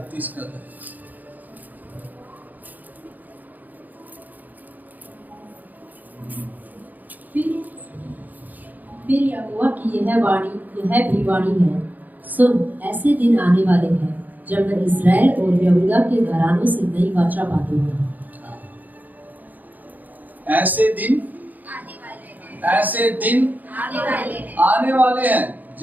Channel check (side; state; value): left; late; 0.083 ms